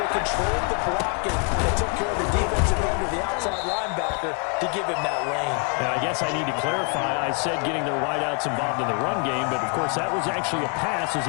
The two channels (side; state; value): right; quieter; 37.3 dB